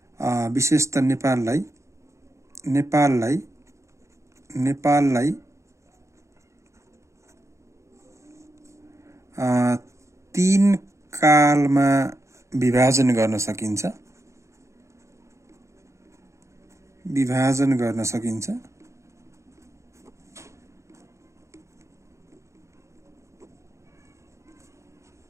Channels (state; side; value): late; left; 0.14 ms